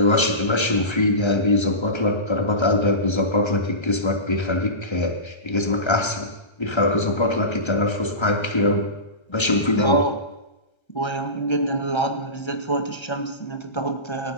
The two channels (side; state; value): right; late; 1.3 ms